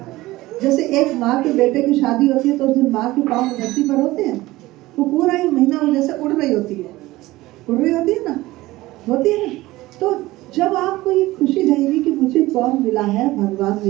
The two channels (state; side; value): quieter; left; 18.3 dB